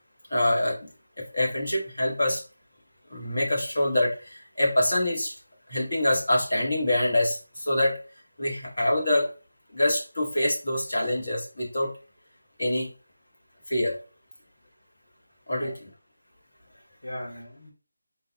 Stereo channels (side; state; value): both; inverted; correlation -0.93